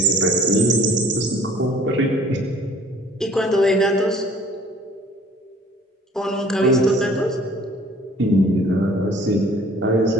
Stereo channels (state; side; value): normal; both; correlation 0.53